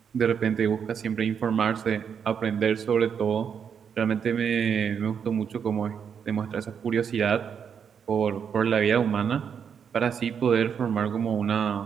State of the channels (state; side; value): quieter; left; 7.3 dB